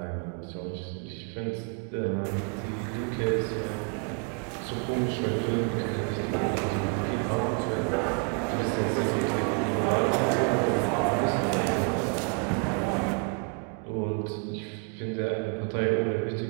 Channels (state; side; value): quieter; left; 38.3 dB